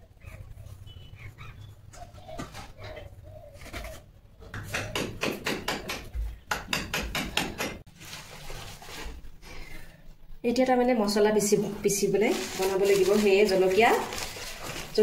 এতিয়া তাৰমানে মছলা পিচিবলৈ বনাব লাগিব সেয়ে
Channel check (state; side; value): identical; both; correlation 1.00